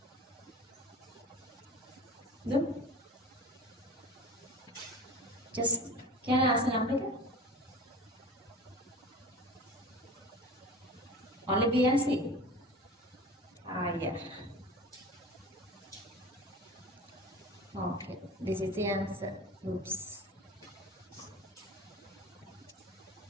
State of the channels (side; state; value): both; normal; correlation 0.36